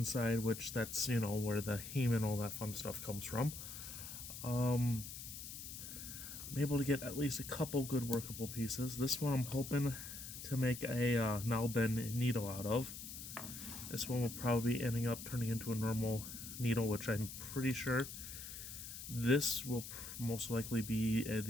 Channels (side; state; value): left; noise; hiss, 10 dB below the sound